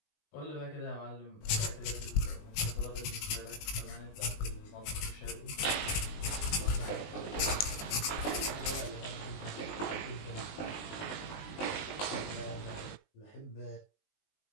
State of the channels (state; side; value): late; right; 19 ms